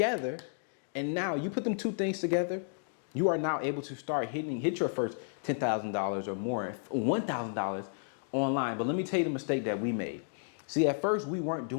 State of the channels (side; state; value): right; silent; digital silence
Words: and now you put them two things together, You are now able to start hit your first $10,000 or more, $1,000 online. But let me tell you the mistake that we made. See, at first we weren't